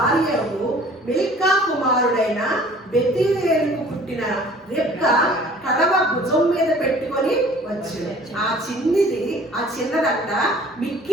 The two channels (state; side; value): normal; both; correlation 0.50